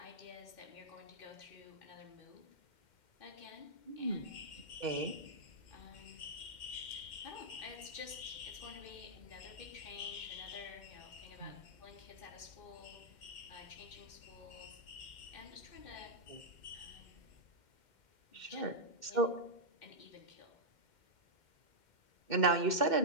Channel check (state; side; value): late; right; 2.1 ms